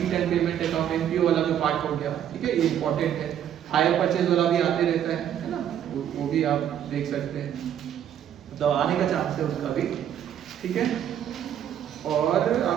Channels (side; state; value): left; quieter; 10.0 dB